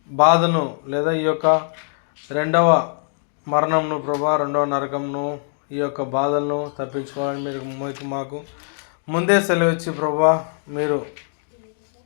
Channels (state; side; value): silent; right; digital silence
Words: బాధను లేదా ఈ యొక్క 2వ మరణంను ప్రభా, 2వ నరకంను, ఈ యొక్క బాధలను తప్పించుకోవాలని మీరు మాకు ముందే సెలవిచ్చి ప్రభా మీరు